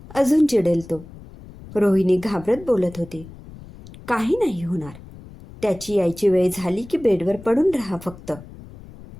अजून चिडेल तो, रोहिणी घाबरत बोलत होती. काही नाही होणार. त्याची यायची वेळ झाली की बेडवर पडून राहा फक्त,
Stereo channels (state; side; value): noise; left; rumble, 18 dB below the sound